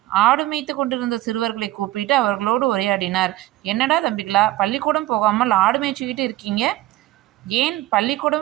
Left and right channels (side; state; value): left; quieter; 16.6 dB